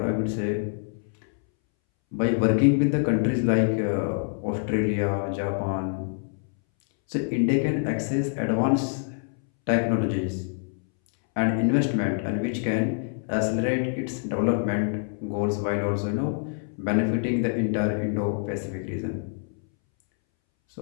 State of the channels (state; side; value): silent; right; 61 dB below the other